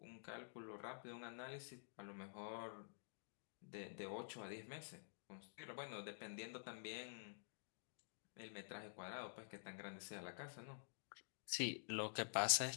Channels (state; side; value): silent; right; digital silence